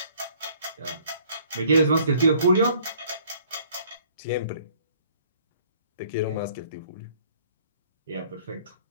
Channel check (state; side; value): inverted; both; correlation -0.59